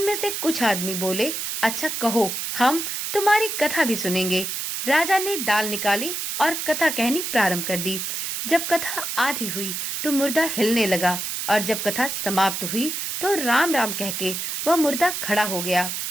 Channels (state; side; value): noise; right; hiss, 3 dB below the sound